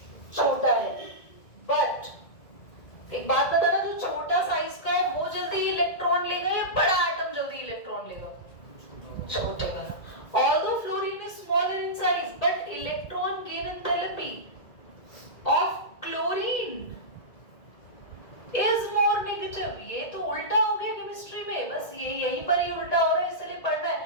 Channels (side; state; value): right; late; 2.0 ms